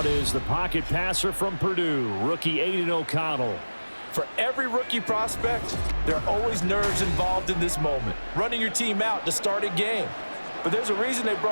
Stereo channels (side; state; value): both; inverted; correlation -1.00